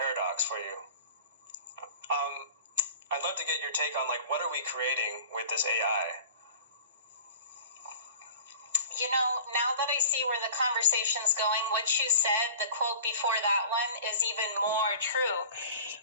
for you. I'd love to get your take on, like, what are we creating with this AI? You know, now that I see where the conversation's going, what you said, the quote before that one, is even more true.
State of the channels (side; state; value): both; inverted; correlation -0.43